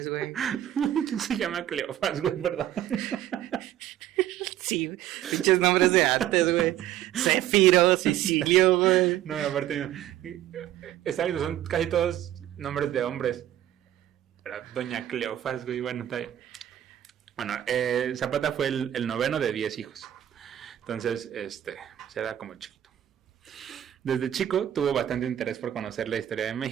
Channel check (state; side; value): quieter; left; 12.1 dB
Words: güey? ¿Quién se llama Cleofas, güey, verdad? Sí, pinches nombres de antes, güey. Céfiro, Sicilio, güey. No, aparte, son casi todos nombres de hombres. Pero doña Cleofas, güey, bueno, está bien. Bueno, Zapata fue el noveno de 10 hijos. Entonces, se era como chiquito. Desde chico tuvo bastante interés por conocer la historia de